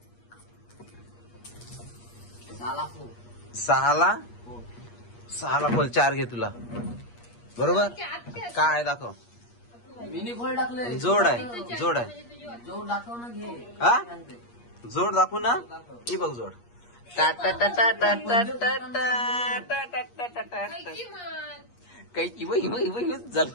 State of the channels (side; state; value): right; late; 8.4 ms